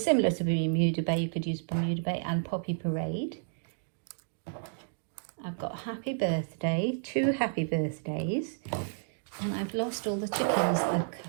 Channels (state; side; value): silent; left; digital silence